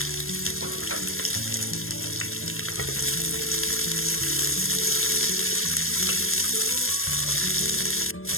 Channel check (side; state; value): right; late; 0.61 ms